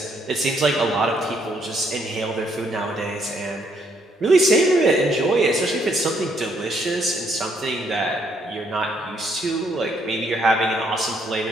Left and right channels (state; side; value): normal; both; correlation 0.70